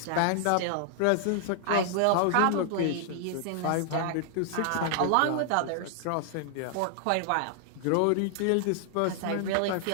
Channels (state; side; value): different; both; correlation 0.00